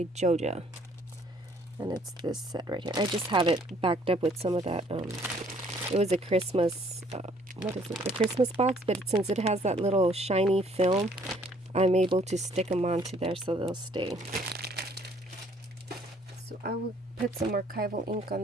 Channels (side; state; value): both; normal; correlation 0.61